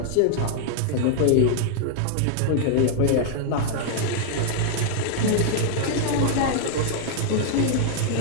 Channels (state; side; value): different; both; correlation -0.01